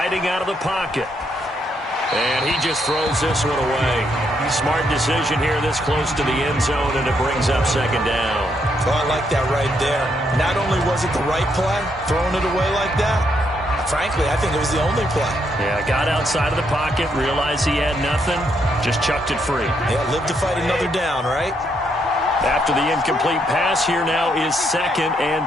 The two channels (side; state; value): both; normal; correlation 0.76